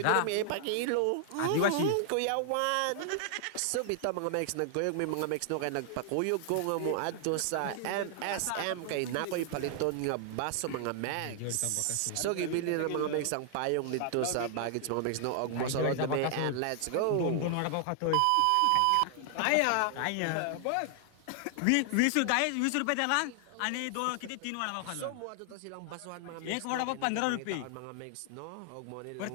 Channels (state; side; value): different; both; correlation 0.00